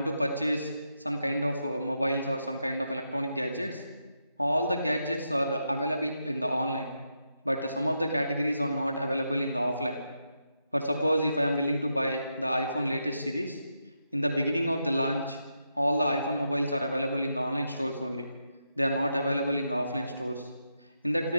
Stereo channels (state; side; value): inverted; both; correlation -0.84